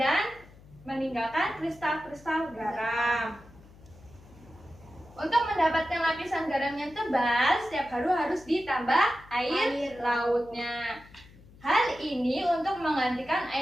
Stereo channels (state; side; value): noise; left; hum, 23 dB below the sound